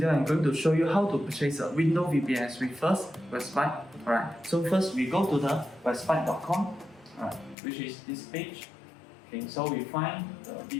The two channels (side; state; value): right; drops out; at 7.6 s